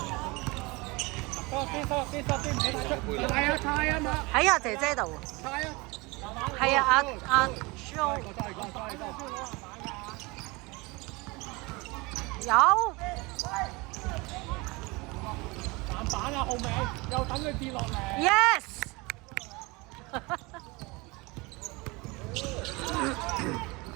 喺阿姐姐度。係啊，阿 Jo。有。籃板啊，後尾又等佢跌落嚟。Yes。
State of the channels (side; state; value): left; quieter; 25.2 dB